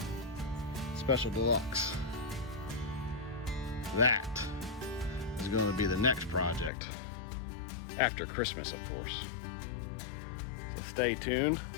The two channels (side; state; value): right; drops out; at 6.7 s